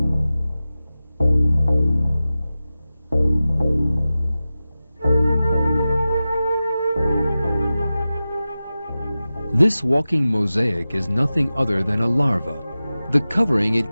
This walking mosaic is nothing other than a larva. The covering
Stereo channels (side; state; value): both; inverted; correlation -0.95